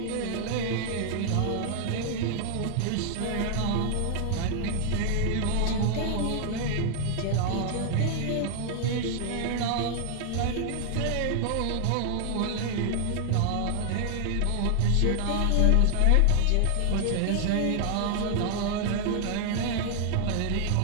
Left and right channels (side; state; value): both; different; correlation 0.00